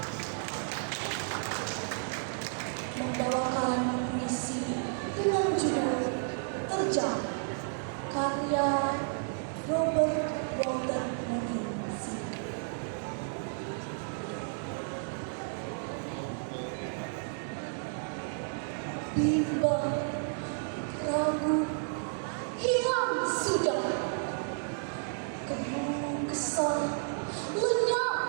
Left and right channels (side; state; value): left; silent; 56 dB below the other